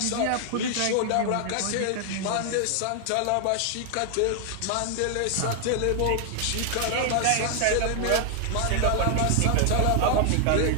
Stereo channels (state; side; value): different; both; correlation 0.00